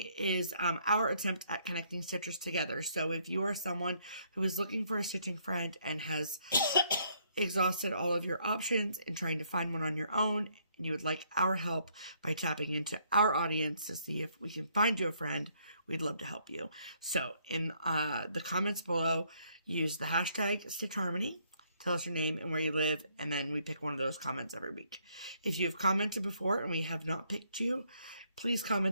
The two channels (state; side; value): inverted; both; correlation -0.69